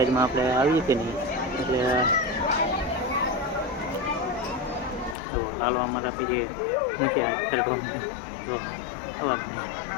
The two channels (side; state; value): right; drops out; at 5.2 s